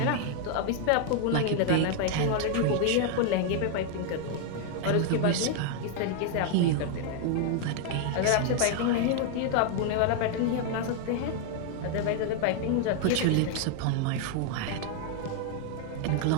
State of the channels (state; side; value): different; both; correlation 0.00